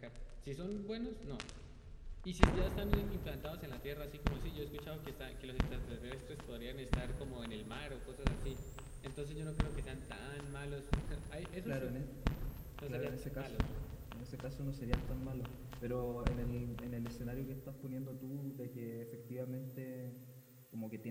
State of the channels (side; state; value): both; identical; correlation 1.00